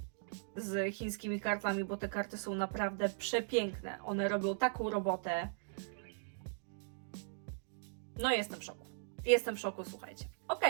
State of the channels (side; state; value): left; silent; digital silence